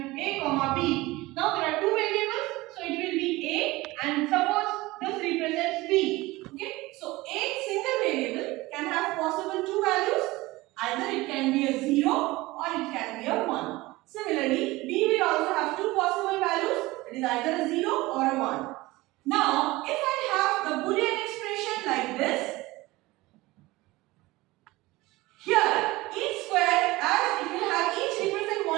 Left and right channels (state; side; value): quieter; left; 20.2 dB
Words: a comma b. Now there are 2 variables, so it will be a, and suppose this represents b. Okay, so a single variable can have possible 2 values. Either it can be a 0 or it can be a 1. Similarly, b will also have 2 possible values. It is either a 0 or a 1. Now, if I have the Boolean expression like this, here, each square, as it will have each represent